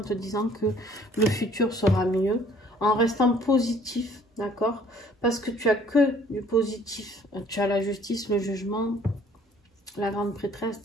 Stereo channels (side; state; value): both; normal; correlation 0.57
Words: te disant que le futur sera mieux, en restant positif, d'accord? Parce que tu as que du positif. Tu as la justice, le jugement. la grande prêtresse,